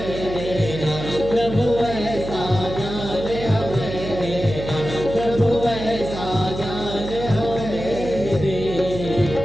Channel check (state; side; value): noise; right; hum, 8 dB below the sound